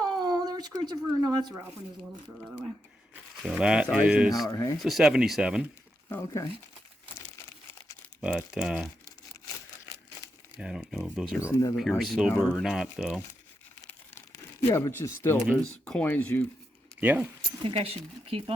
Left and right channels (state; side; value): normal; both; correlation 0.84